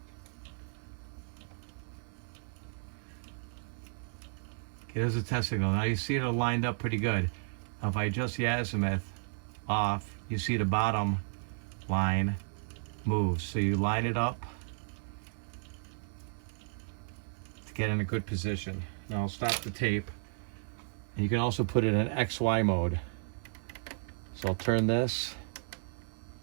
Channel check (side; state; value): left; silent; digital silence